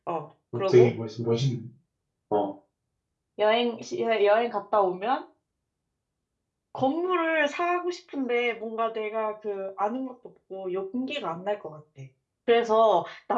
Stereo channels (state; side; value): identical; both; correlation 1.00